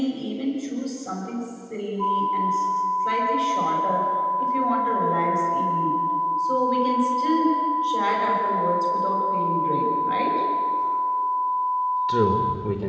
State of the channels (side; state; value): both; identical; correlation 1.00